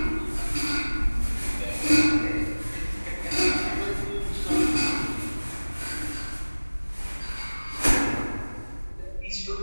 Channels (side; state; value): both; inverted; correlation -1.00